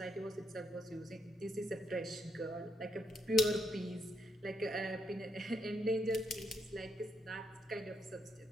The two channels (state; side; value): normal; both; correlation 0.77